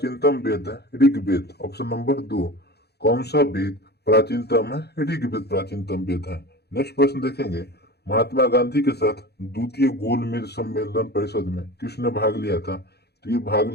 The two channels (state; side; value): late; right; 0.48 ms